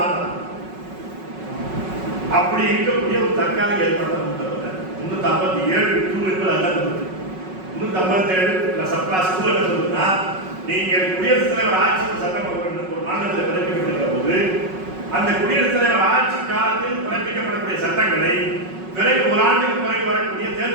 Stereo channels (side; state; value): left; late; 5.4 ms